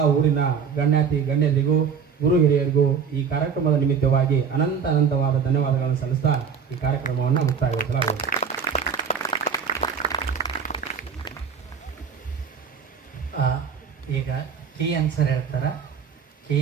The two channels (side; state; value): left; quieter; 6.7 dB